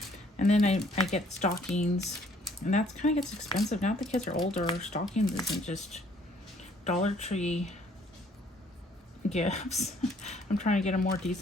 And then I get stockings, and that kind of gets expensive. Now that the kids are older, stockings isn't just Dollar Tree gifts. I'm trying to get a more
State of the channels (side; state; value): both; normal; correlation 0.62